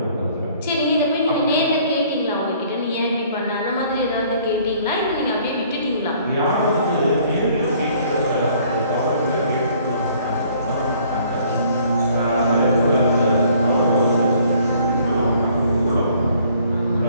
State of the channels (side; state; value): both; inverted; correlation -0.58